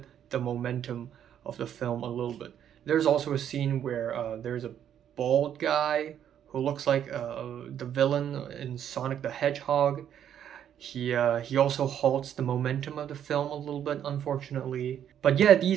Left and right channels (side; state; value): left; quieter; 9.7 dB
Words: the momentum of the film a little bit. There's also a scene where there's a bald guy who looks like the villain in Sonic the Hedgehog. He also halts the momentum of the film a little bit, unfortunately. But yeah,